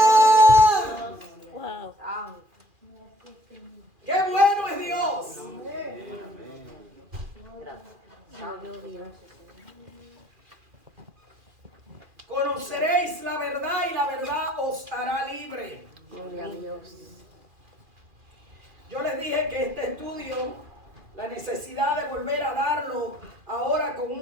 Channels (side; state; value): left; late; 2.4 ms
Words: Wow. ¡Qué bueno es Dios! Dios. Conoceréis la verdad y la verdad os hará libre. Gloria a Dios. Yo les dije que este estudio, la necesidad de volver a darlo ahora con